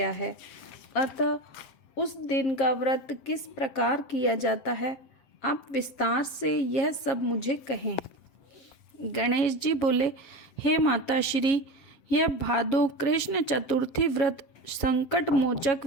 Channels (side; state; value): right; late; 7.3 ms